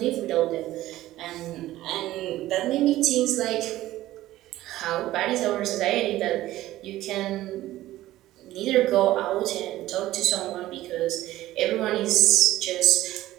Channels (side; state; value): left; quieter; 15.4 dB